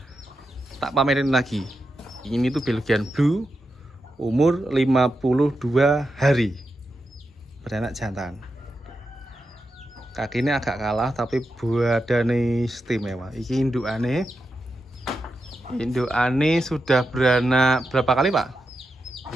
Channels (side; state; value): both; normal; correlation 0.88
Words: Tak pamerin lagi. Ini tuh Belgian Blue, umur 52 hari, beranak jantan. Kakinya agak kalah, tapi badannya istimewa. Ini indukane sudah beranak berapa kali, Pak?